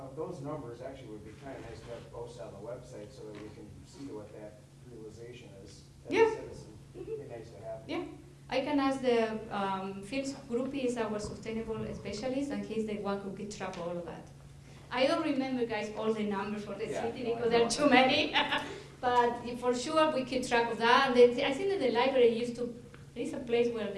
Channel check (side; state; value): both; identical; correlation 1.00